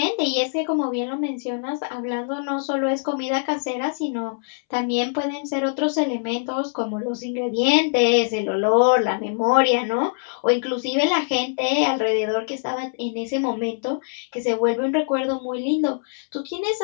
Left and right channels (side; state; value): right; silent; 63 dB below the other